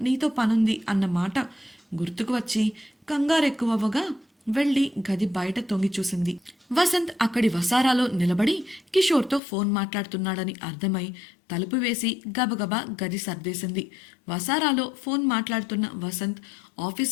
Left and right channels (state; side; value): drops out; right; at 9.4 s